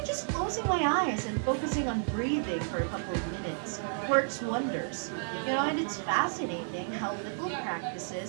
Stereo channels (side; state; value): left; silent; digital silence